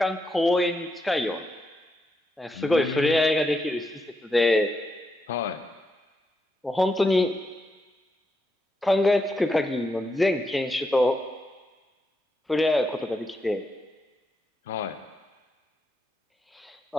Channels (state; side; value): normal; both; correlation 0.84